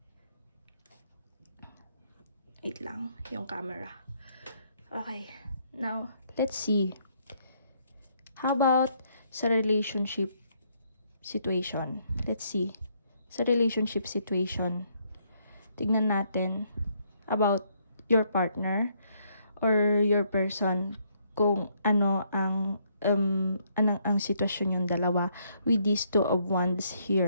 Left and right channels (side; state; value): both; inverted; correlation -0.71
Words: Wait lang, yung camera. Okay, now let's see. How about sa relationship situation? Let's see. Sa relationship situation, tignan natin about your partner or your person, kung ano ang sitwasyon yung dalawa with these 2 of Wands